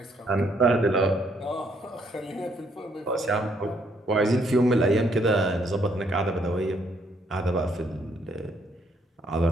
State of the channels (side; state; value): both; normal; correlation 0.70